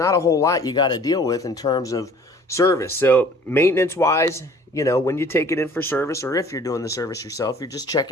a whole lot you got to deal with in terms of service. So maintenance-wise, you know, when you take it in for service, or if you're doing the service yourself, you're just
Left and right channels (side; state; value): both; normal; correlation 0.52